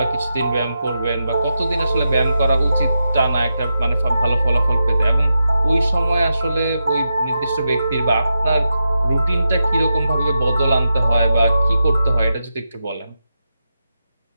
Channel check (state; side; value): inverted; both; correlation -0.87